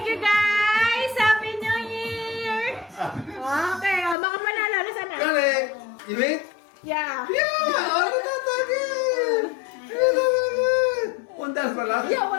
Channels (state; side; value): drops out; right; at 4.2 s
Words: you guys. Happy New Year. Okay, mga panalo. Nasaan na? Galing. You wait? Yeah. Yeah! Ano na tagay? $1 pa lang? Yeah,